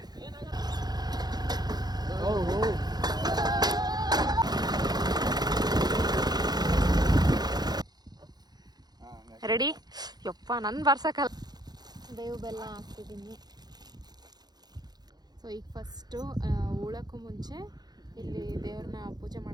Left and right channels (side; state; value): left; late; 0.19 ms